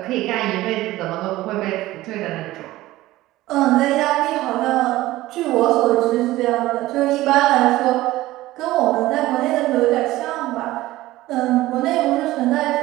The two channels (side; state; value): left; quieter; 16.9 dB